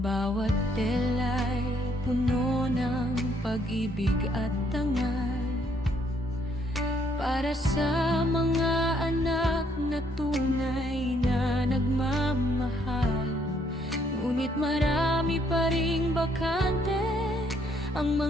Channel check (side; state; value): both; normal; correlation 0.69